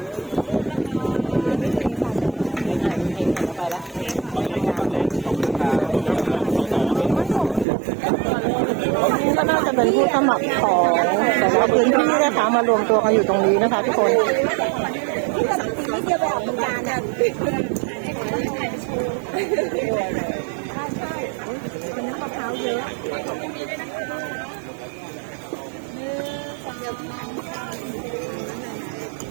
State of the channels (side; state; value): left; drops out; at 7.7 s